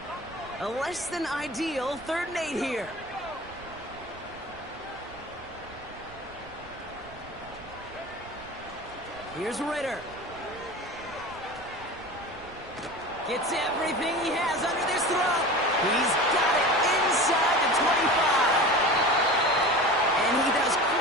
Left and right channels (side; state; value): right; noise; rumble, 21 dB below the sound